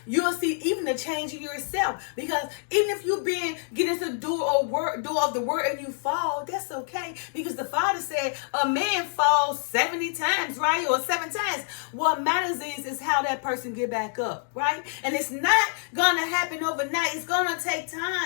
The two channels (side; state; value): right; silent; 57 dB below the other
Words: you'll see even the change in yourself. Because even if you've been getting to do of the word and you fall, that's okay. Because the Father said a man falls 70 times, right, or 7 times. What matters is how that person get back up, right? And it's not going to happen overnight. It's going to take